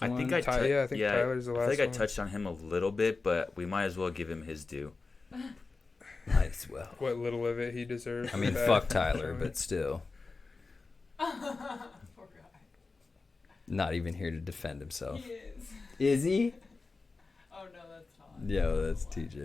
I think Tyler's the last I think I one. touched on him a little bit, but we might as well give him his due. Might as well. What little of it he deserves. I mean, back. fuck Tyler, but still. Poor guy. Not even here to defend himself. He is. Is he? Oh no, that's not. Yo, that's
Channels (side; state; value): right; quieter; 4.0 dB